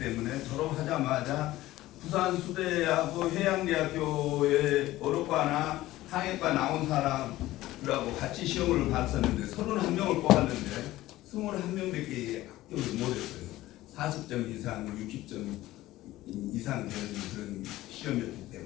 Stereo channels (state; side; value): quieter; right; 16.4 dB